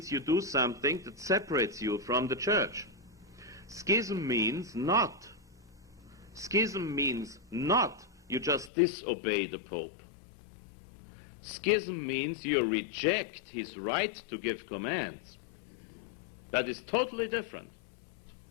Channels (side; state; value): right; drops out; at 8.7 s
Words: you do something that separates you from the Church. Schism means not. Schism means not you just disobey the Pope. Schism means you reject his right to give commands. That is totally different.